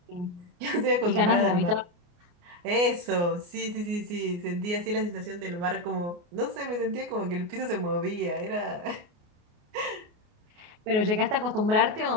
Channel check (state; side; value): late; left; 29 ms